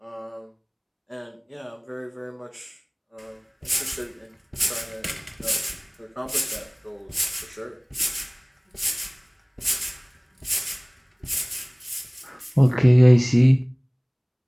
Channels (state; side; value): identical; both; correlation 1.00